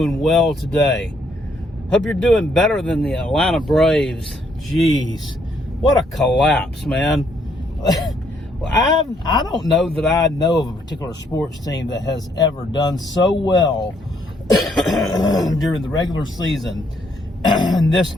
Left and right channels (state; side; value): normal; both; correlation 0.70